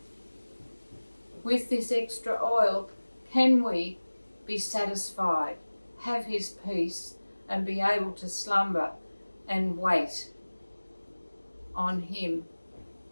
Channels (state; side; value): inverted; both; correlation -1.00